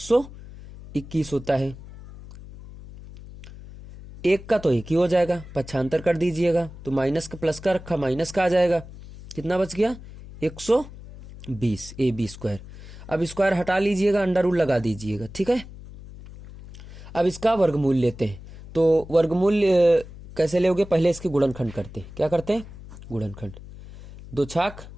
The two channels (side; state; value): left; noise; hum, 16 dB below the sound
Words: होता है। 1 का तो 1 ही हो जाएगा, पक्षांतर कर दीजिएगा। तो माइनस का प्लस का रखा, माइनस का आ जाएगा। कितना बच गया? 120 AB स्क्वायर। अब स्क्वायर हटा लीजिएगा, अंडर रूट लगा दीजिएगा, ठीक है। अब इसका वर्गमूल लेते हैं। तो वर्गमूल कैसे लोगे? पहले इसके गुणनखंड करते हैं। क्या करते हैं? गुणनखंड। 2 छाक